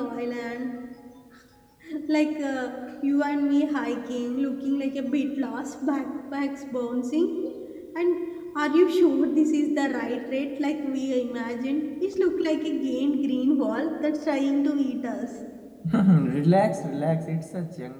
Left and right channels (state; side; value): identical; both; correlation 1.00